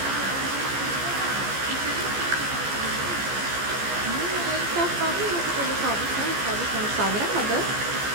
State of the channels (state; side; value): late; left; 15 ms